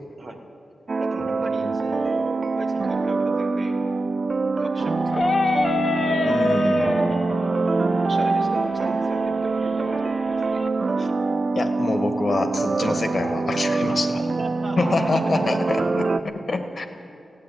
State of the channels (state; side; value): normal; both; correlation 0.91